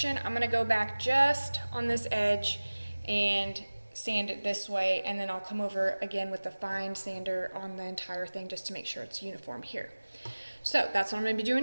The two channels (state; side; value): inverted; both; correlation -1.00